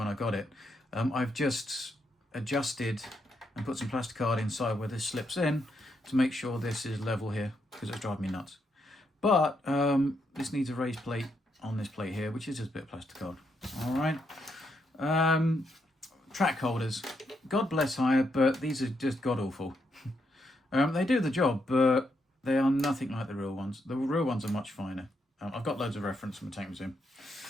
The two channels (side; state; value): both; normal; correlation 0.79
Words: I got it. I've just adjusted and put some plastic card inside where this slips in to make sure this is level here, because it's driving me nuts. But this needs a raised plate on this plate here, which is just a bit of plastic card. All right. Track holders. God bless Haya, but these are just god-awful. They do the job, but they are nothing like the real ones. The real ones are much finer. I've got loads of reference from the Tank Museum.